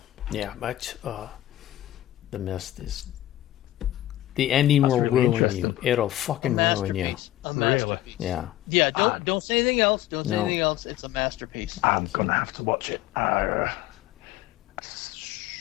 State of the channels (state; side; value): quieter; right; 14.4 dB